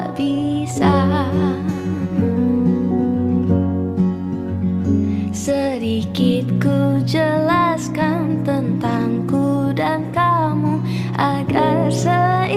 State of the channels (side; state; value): both; identical; correlation 1.00